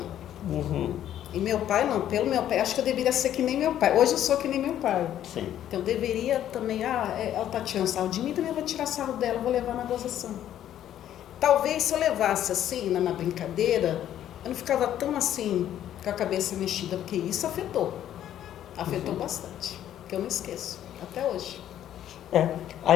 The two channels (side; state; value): right; quieter; 11.3 dB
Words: Uhum. E meu pai não, pelo meu pai, acho que eu deveria ser que nem meu pai. Hoje eu sou que nem meu pai. Sim. Então eu deveria também, ela tá tirando sarro de mim, também eu vou tirar sarro dela, vou levar na gozação. Talvez se eu levasse assim, na brincadeira, eu não ficava tão assim, com a cabeça mexida, porque isso afetou. Afetou bastante, que eu não esqueço, até hoje.